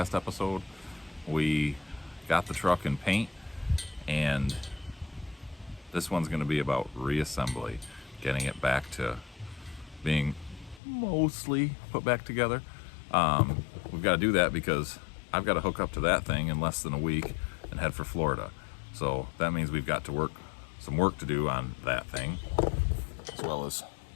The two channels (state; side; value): drops out; right; at 10.8 s